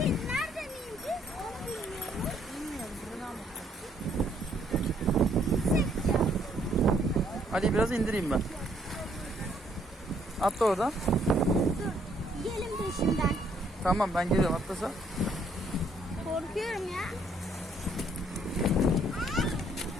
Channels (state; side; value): normal; both; correlation 0.67